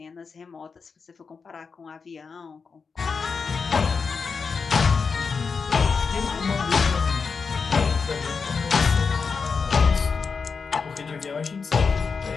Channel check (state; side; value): quieter; right; 5.2 dB